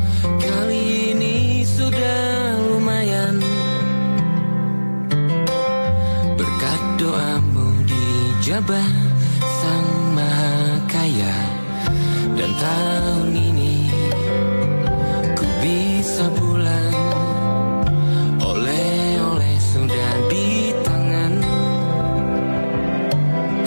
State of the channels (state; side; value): inverted; both; correlation -1.00